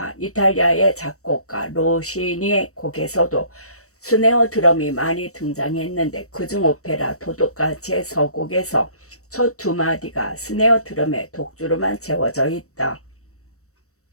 이탈리아의 작곡가 로시니의 곡에서도 스네어 드럼이 많이 등장했는데, 그중 오페라 도둑같이의 서곡에서 첫 두 마디가 스네어 드럼의 독주로만 채워져 있다.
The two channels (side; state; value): right; late; 0.65 ms